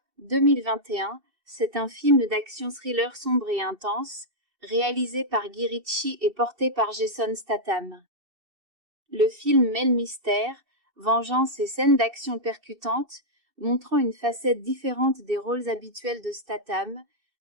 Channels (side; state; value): left; late; 2.7 ms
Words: 2021, c'est un film d'action-thriller sombre et intense, réalisé par Guy Ritchie et porté par Jason Statham. Le film mêle mystère, vengeance et scènes d'action percutantes, montrant une facette différente des rôles habituels de Statham,